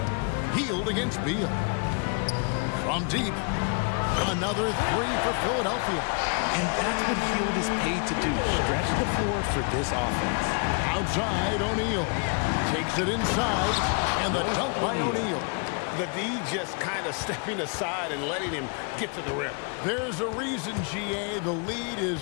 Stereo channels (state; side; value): quieter; right; 36.7 dB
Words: Healed against Beal. From deep. Another 3 for Philadelphia. And that's what Hield is paid to do. Stretch the floor for this offense. Outside, O'Neal. Takes it inside. And the dunk by O'Neal. The D just kind of stepping aside and letting him get to the rim. There's a reason, GA. The lead is